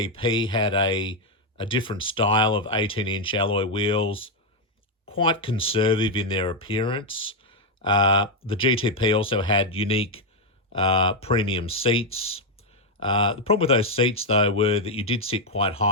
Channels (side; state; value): both; normal; correlation 0.02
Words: had a different style of 18-inch alloy wheels, quite conservative in their appearance. The GTP also had unique premium seats. The problem with those seats, though, were that you did sit quite